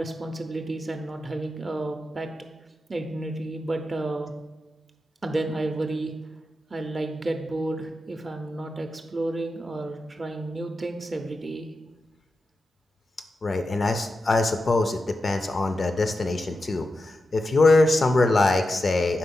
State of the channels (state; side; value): normal; both; correlation 0.89